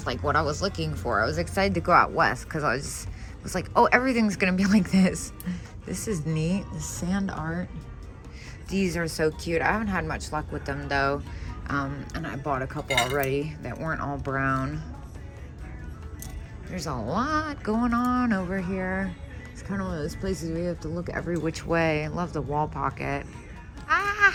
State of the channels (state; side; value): identical; both; correlation 1.00